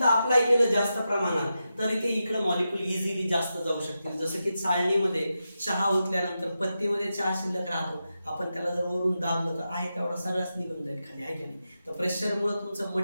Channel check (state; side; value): inverted; both; correlation -0.89